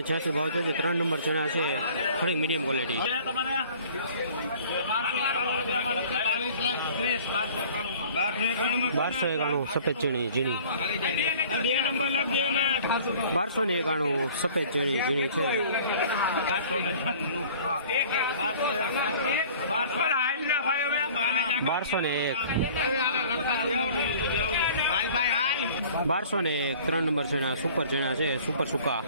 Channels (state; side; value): inverted; both; correlation -0.49